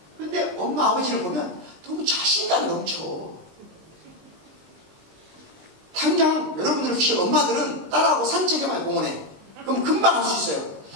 그런데 엄마 아버지를 보면 너무 자신감 넘쳐. 당장 여러분들 혹시 엄마들은 딸하고 산책해봐요. 공원에. 그럼 금방 할 수 있어요.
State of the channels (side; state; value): left; late; 19 ms